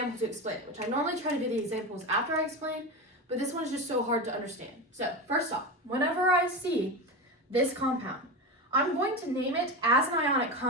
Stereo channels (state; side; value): normal; both; correlation 0.21